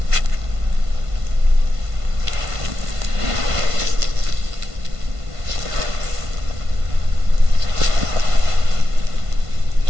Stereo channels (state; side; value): late; left; 1.5 ms